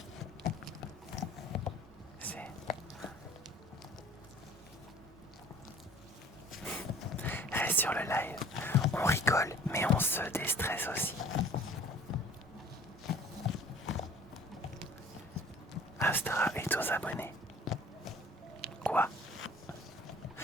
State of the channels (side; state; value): both; normal; correlation 0.49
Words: Reste sur le live. pense, déstresse aussi. Astra est aux abonnés. Quoi?